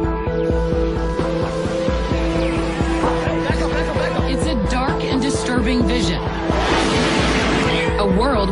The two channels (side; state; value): both; identical; correlation 1.00